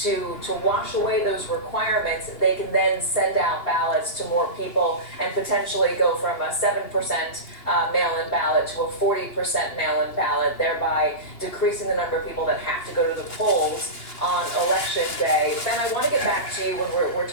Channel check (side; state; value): right; late; 2.9 ms